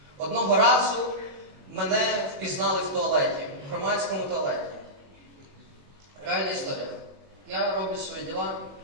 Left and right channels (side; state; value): left; late; 21 ms